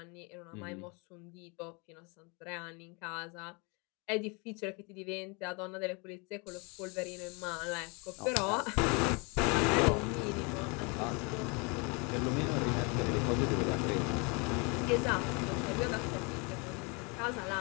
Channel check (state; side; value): quieter; right; 30.8 dB